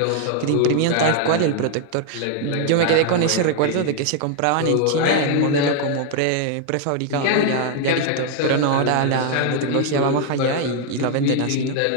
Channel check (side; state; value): both; different; correlation 0.00